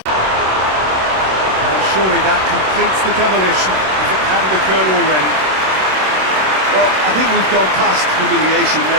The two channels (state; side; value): late; left; 26 ms